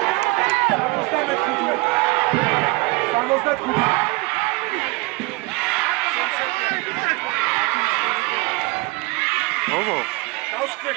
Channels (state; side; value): quieter; left; 24.7 dB